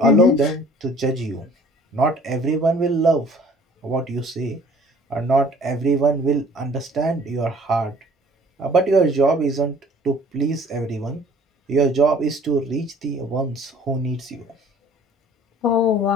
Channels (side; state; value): both; normal; correlation 0.53